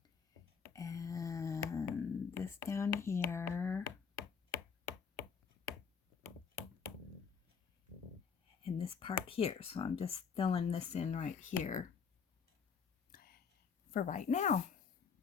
And this down here. And this part here. So I'm just filling this in right here for right now.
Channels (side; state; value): right; quieter; 6.2 dB